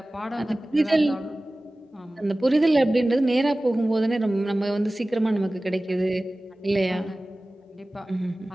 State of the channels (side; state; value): both; normal; correlation 0.97